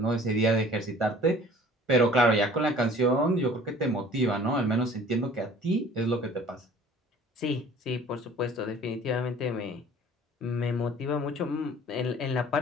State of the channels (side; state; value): both; normal; correlation 0.49